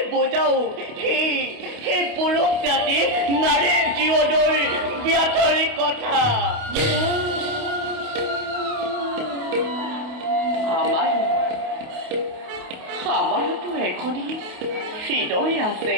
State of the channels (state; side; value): late; left; 28 ms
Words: বুজাও সেই পুৰুষ জাতি নাৰীৰ জীৱনৰ ব্যাধৰি কথা। আমাৰোতো এখনি হৃদয় আছে,